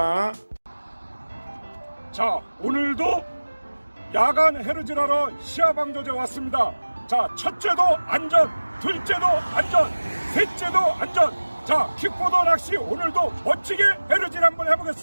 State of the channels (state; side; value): inverted; both; correlation -1.00